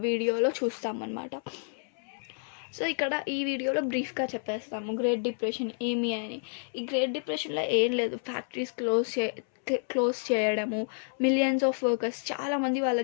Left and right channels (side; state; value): right; silent; 58 dB below the other